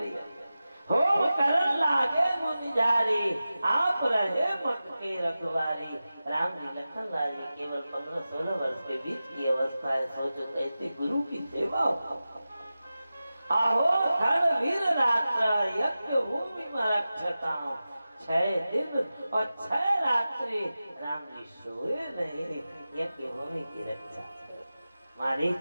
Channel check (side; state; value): both; inverted; correlation -0.94